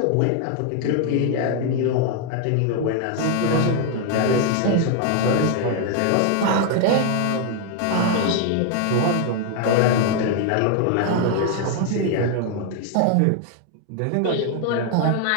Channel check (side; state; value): both; different; correlation 0.00